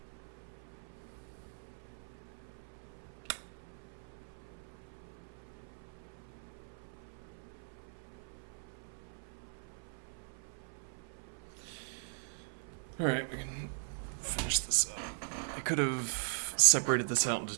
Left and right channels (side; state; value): left; silent; 51 dB below the other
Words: Alright, we can finish this up. I could have separated this out into